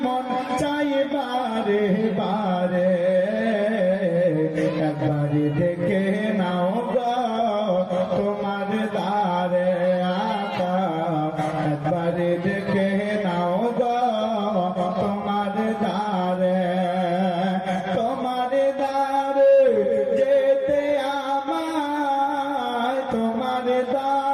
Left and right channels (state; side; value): identical; both; correlation 1.00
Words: মন চাই বারে বারে একবারে দেখে নাও গো তোমার দারে একবারে দেখে নাও গো তোমার দারে তোমার দারে যেতে আমায় তোমার